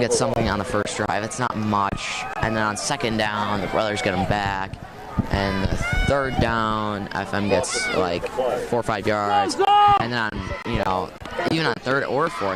something on the first drive. It's not much, and then on second down, the Brothers get them back. And the third down, FM gets like 4 or 5 yards. And then on, even on third or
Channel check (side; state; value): both; identical; correlation 1.00